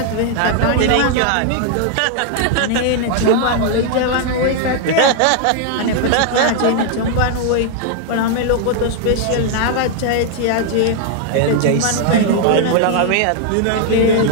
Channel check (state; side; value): different; both; correlation 0.00